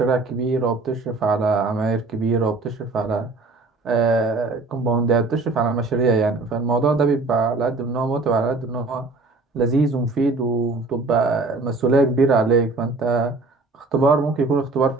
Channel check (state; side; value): quieter; left; 3.6 dB